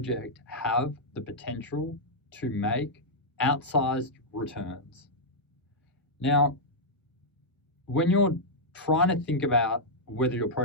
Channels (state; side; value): normal; both; correlation -0.08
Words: have the potential to make outsized returns? Now, when you're trying to think about whether your